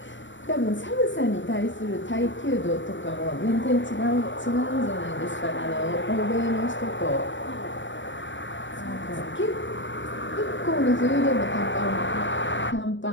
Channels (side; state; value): right; late; 0.54 ms